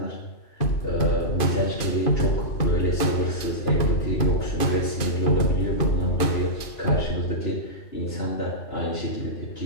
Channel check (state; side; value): late; right; 2.5 ms